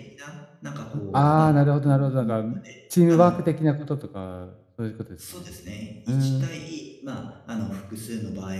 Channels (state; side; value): identical; both; correlation 1.00